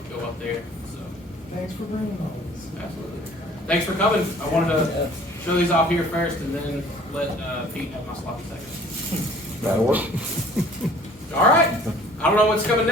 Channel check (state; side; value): normal; both; correlation 0.52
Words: go up there, so. Thanks for bringing all this. Absolutely. Thanks for coming. I wanted to show these off here first and then let Pete have my sloppy second. That'll work. All right. I don't know what's coming